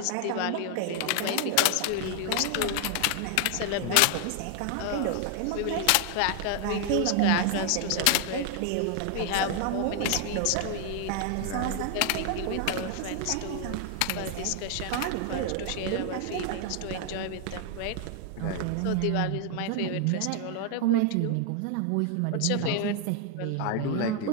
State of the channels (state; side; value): different; both; correlation 0.00